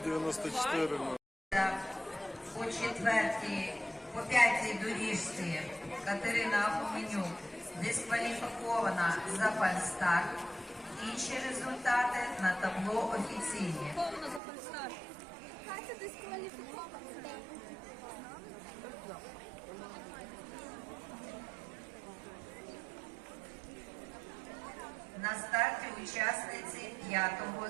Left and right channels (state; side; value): drops out; left; at 14.4 s